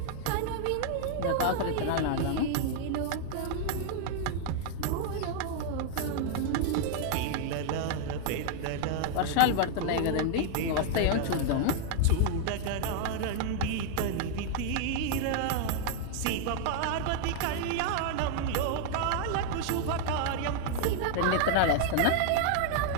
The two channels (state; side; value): different; both; correlation 0.00